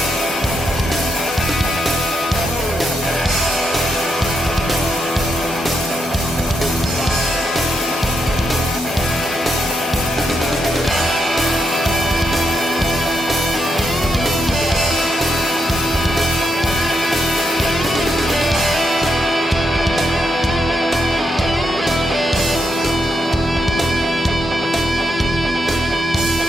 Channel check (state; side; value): normal; both; correlation 0.81